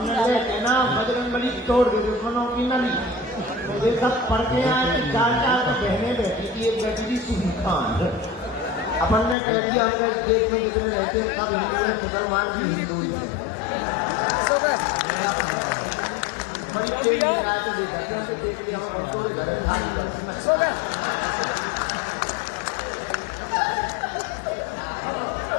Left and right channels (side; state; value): right; drops out; at 9.3 s